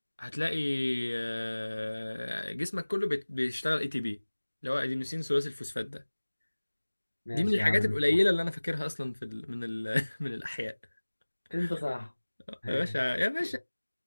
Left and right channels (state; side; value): inverted; both; correlation -1.00